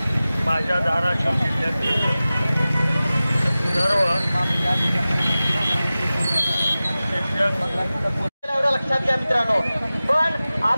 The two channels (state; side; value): inverted; both; correlation -0.96